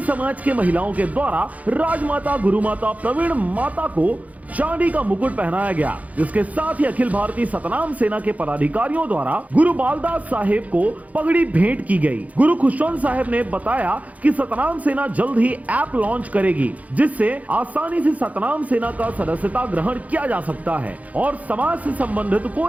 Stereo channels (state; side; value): late; left; 0.072 ms